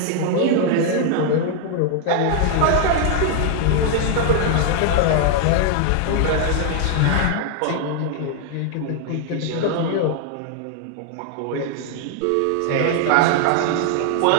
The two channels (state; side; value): different; both; correlation 0.00